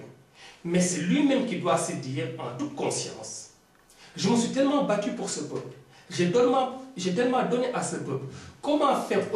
Mais c'est lui-même qui doit se dire, en toute conscience, je me suis tellement battu pour ce peuple. J'ai tellement donné à ce peuple. Comment faire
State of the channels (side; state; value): both; identical; correlation 1.00